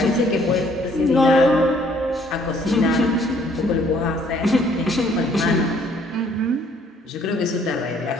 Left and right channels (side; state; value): both; normal; correlation 0.62